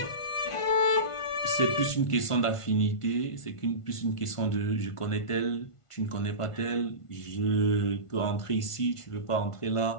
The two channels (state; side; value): late; right; 1.5 ms